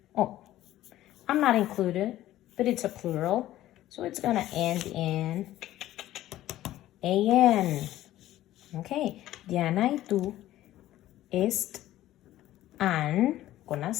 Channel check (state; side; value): quieter; right; 14.3 dB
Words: Oh, I'm not included, but it's a plural. So it's going to end in A-N. Okay. Diana y tú están con